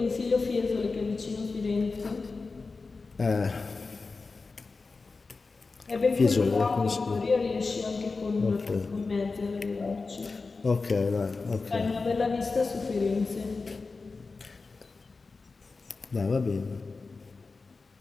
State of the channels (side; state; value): right; quieter; 4.1 dB